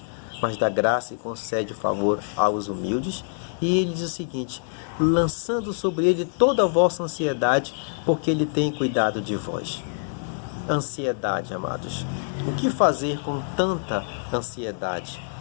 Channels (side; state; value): right; silent; digital silence